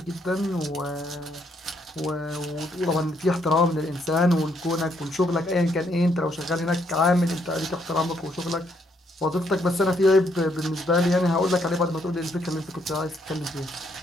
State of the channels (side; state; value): both; normal; correlation 0.72